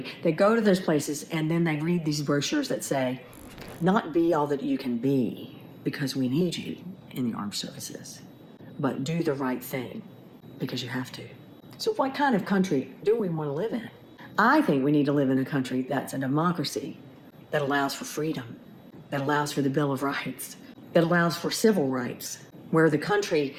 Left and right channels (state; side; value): identical; both; correlation 1.00